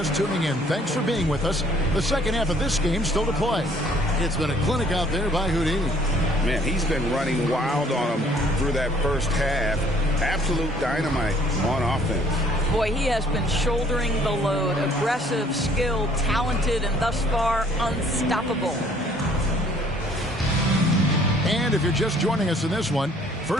tuning in, thanks for being with us. The second half of this game still to play. It's been a clinic out there by Houdini. Man, he's been running wild on him through that first half. Absolute dynamite on offense. Boy, he has been shouldering the load. Aggressive, skilled, talented, and thus far unstoppable. And if you're just joining us in this one,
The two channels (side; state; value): both; normal; correlation 0.59